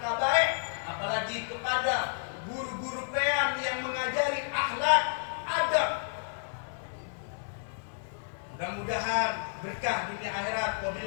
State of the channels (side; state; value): right; silent; digital silence